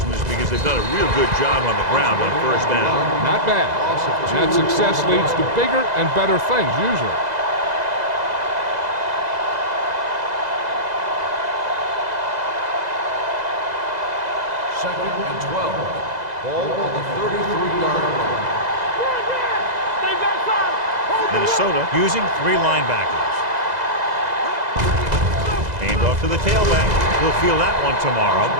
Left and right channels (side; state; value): left; late; 2.0 ms